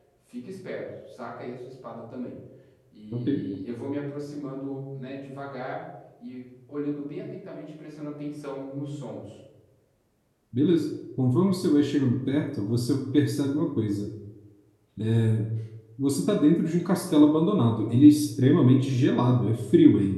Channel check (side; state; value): both; identical; correlation 1.00